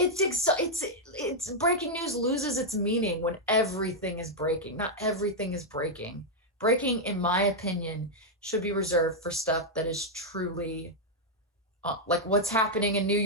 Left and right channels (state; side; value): normal; both; correlation -0.03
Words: breaking news loses its meaning when everything is breaking. Not everything is breaking. Breaking, in my opinion, should be reserved for stuff that is truly like what's happening in New